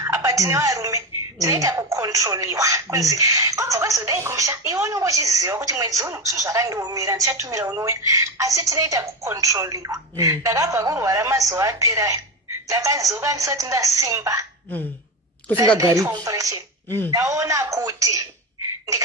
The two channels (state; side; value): normal; both; correlation 0.17